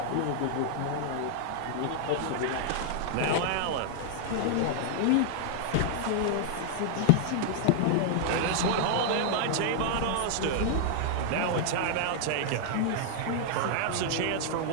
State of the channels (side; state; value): both; different; correlation -0.01